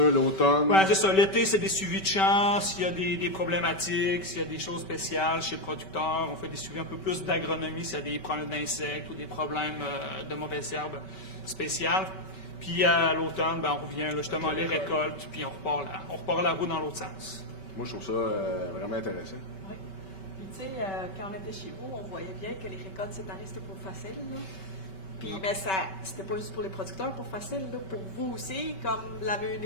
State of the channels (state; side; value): late; right; 5.2 ms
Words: Oui, c'est ça. L'été, c'est des suivis de champs. S'il y a des problématiques, s'il y a des choses spéciales chez le producteur, on fait des suivis un peu plus d'agronomie s'il y a des problèmes d'insectes ou des problèmes de mauvaises herbes spéciales. Puis à l'automne, on revient là, justement les récoltes, puis on repart la roue dans l'autre sens. Moi, je trouve ça vraiment intéressant. Oui. Puis tu sais, quand on était chez vous, on voyait bien que les récoltes cette année, c'était pas facile. Là. Puis mais c'était pas juste pour les producteurs pour facile, là, pour vous aussi, comme la